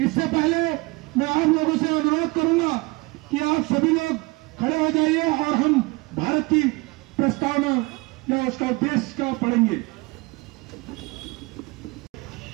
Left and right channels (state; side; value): quieter; left; 25.4 dB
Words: इससे पहले मैं आप लोगों से अनुरोध करूंगा कि आप सभी लोग खड़े हो जाइए और हम भारत की प्रस्तावना या उसका उद्देश्य का पढ़ेंगे।